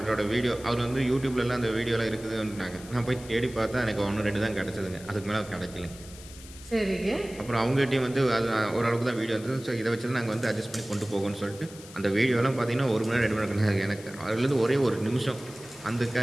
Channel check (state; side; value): noise; left; hiss, 18 dB below the sound